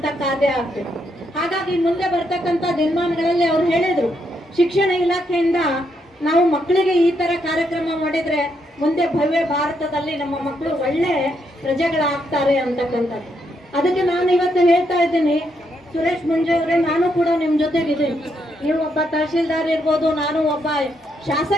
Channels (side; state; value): both; normal; correlation 0.78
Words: ಕಾರ್ಯ ಆಗ್ಬೇಕು. ಹಾಗಾಗಿ ಮುಂದೆ ಬರ್ತಕ್ಕಂಥ ದಿನಮಾನಗಳಲ್ಲಿ ಅವ್ರು ಹೇಳಿದ್ರು, ಶಿಕ್ಷಣ ಇಲಾಖೆಯಿಂದ ನಾವು ಮಕ್ಕಳಿಗೆ ಈ ತರ ಕಾರ್ಯಕ್ರಮ ಮಾಡಿದ್ರೆ ಮುಂದೆ ಭವ್ಯ ಭಾರತದಲ್ಲಿ ನಮ್ಮ ಮಕ್ಕಳು ಒಳ್ಳೆ ಪ್ರಜೆಗಳಾಗ್ತಾರೆ ಅಂತಕ್ಕಂಥದ್ದು. ಅದಕ್ಕೆ ನಾನು ಇವತ್ತು ಹೇಳ್ತಾ ಇದ್ದೀನಿ, ಸುರೇಶ್ ಮುಂಜೆ ಅವರೇ, ನಾನು ಕೂಡ ನಿಮ್ ಜೊತೆಗಿದ್ದೀನಿ. ನೀವು ಒಬ್ಬ ತಹಶೀಲ್ದಾರ್ ಇರ್ಬೋದು, ನಾನು ಒಬ್ಬ